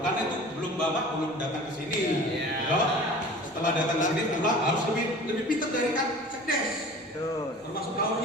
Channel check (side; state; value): both; normal; correlation 0.42